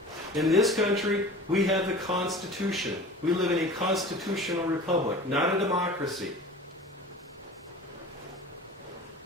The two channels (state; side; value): normal; both; correlation 0.38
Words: In this country, we have the Constitution. We live in a constitutional republic, not a democracy.